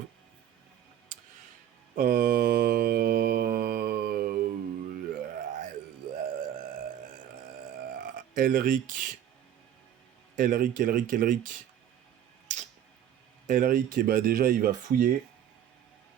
Elric. Elric, et bah déjà, il va fouiller.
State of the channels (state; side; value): quieter; left; 10.3 dB